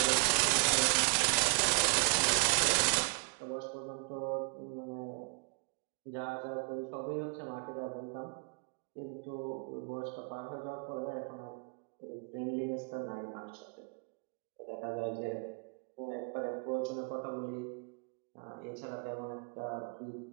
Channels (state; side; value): quieter; left; 34.7 dB